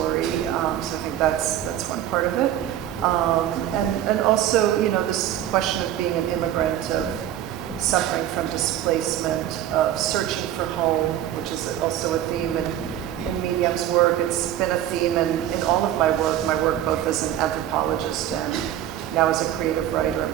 So I think that's one part of it. And also, you know, this question of being an immigrant, of suffering from displacement, of searching for home, which is also a theme in Myriam's work. It's been a theme in all of my work both as an anthropologist and now as a creative writer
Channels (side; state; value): left; quieter; 11.7 dB